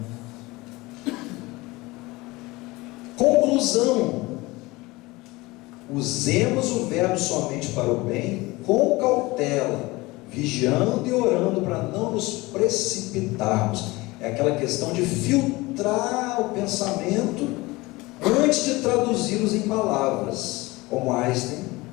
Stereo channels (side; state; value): right; quieter; 21.7 dB